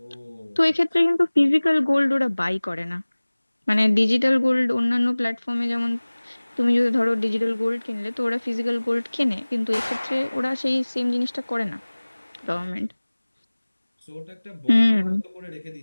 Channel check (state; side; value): inverted; both; correlation -1.00